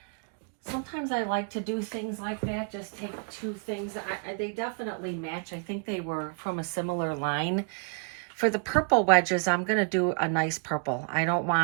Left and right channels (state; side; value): quieter; left; 37.5 dB